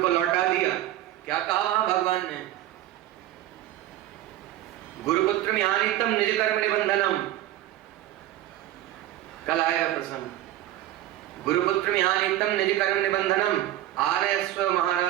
लौटा दिया। क्या कहा वहां भगवान ने? गुरुपुत्र न्यानीतम निज कर्म निबंधनम। कल आएगा प्रसंग। गुरुपुत्र न्यानीतम निज कर्म निबंधनम आर्यस्व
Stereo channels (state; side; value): quieter; left; 13.9 dB